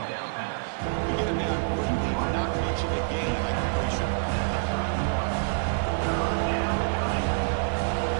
We get him down quickly, but not much of a gain by completion.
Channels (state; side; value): silent; left; 59 dB below the other